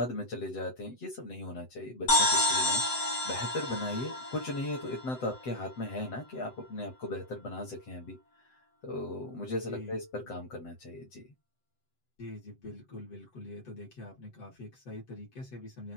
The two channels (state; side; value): late; right; 7.9 ms